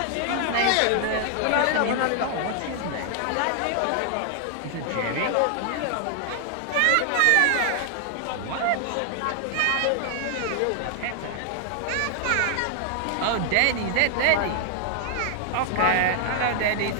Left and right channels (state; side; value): different; both; correlation 0.00